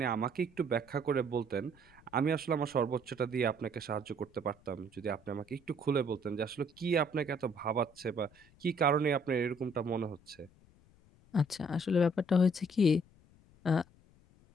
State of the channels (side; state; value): left; noise; rumble, 28 dB below the sound